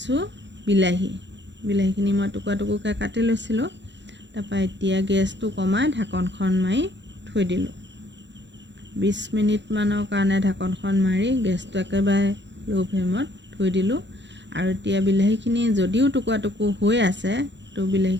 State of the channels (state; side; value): late; left; 0.52 ms